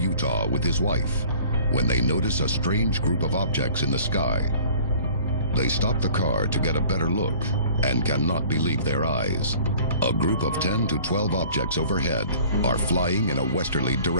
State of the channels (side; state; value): both; inverted; correlation -0.50